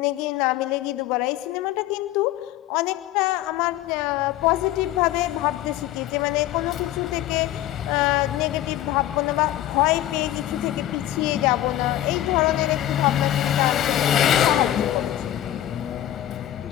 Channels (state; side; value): quieter; right; 13.4 dB